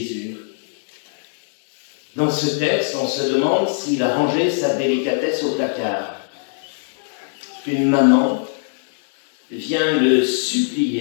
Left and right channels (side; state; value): right; silent; digital silence